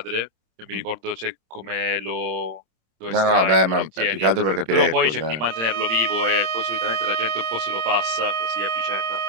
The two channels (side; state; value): left; late; 27 ms